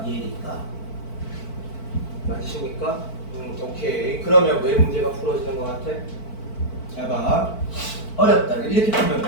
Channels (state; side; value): late; right; 4.5 ms